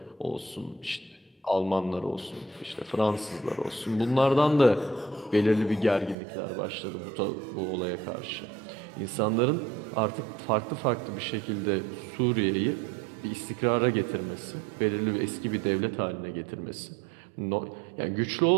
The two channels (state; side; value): drops out; left; at 6.2 s